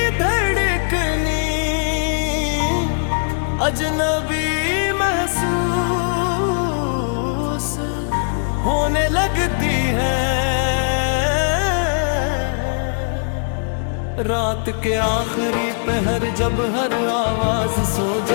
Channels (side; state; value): right; silent; digital silence